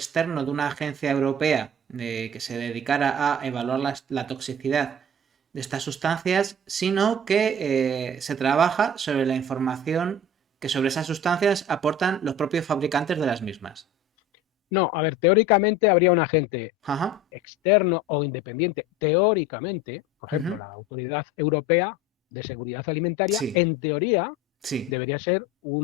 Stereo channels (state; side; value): normal; both; correlation 0.39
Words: de una agencia europea que se dedicara a evaluar la toxicidad de estas sustancias, sino que se trabaja sobre la información que sobre esas sustancias aportan los propios fabricantes de las mismas. No, a ver, teóricamente habría un agente Ajá. externo o independiente, teóricamente, por ejemplo, Ujú. la Autoridad Europea de Seguridad Alimentaria, Sí, en teoría, sí, debería ser